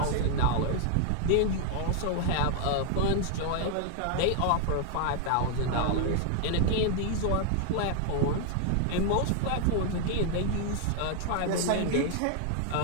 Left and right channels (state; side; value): different; both; correlation 0.00